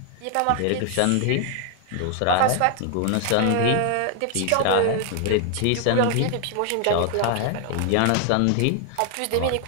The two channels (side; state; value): both; different; correlation 0.00